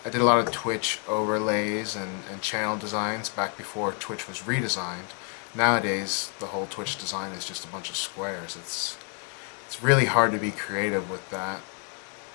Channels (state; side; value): quieter; right; 39.3 dB